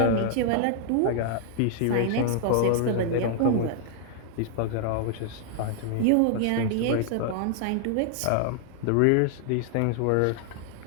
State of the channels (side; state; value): both; different; correlation 0.00